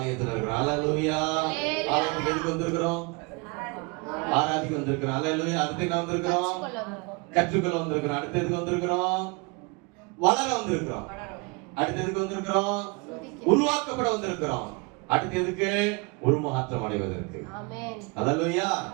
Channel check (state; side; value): quieter; left; 29.4 dB